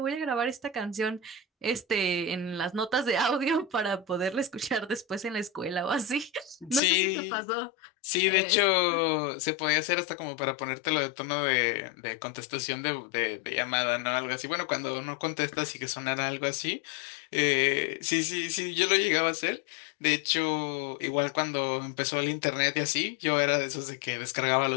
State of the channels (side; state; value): right; drops out; at 6.8 s